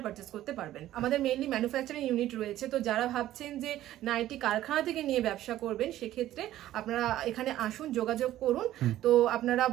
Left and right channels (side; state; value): left; quieter; 13.7 dB